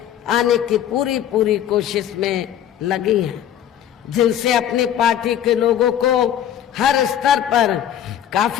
आने की पूरी कोशिश में लगी हैं, जिनसे अपनी पार्टी के लोगों को हर स्तर पर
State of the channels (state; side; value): quieter; right; 10.4 dB